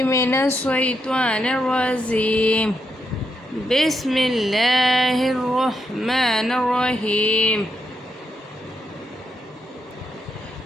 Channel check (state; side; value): normal; both; correlation 0.81